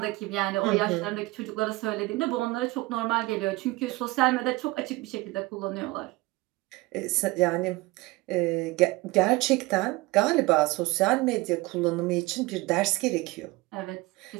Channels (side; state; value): left; quieter; 21.4 dB